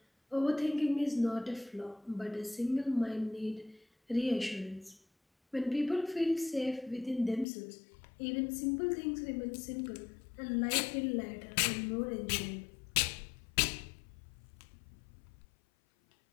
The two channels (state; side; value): drops out; right; at 7.5 s